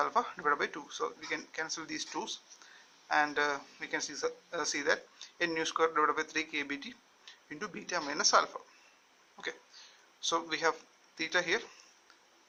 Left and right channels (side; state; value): both; identical; correlation 1.00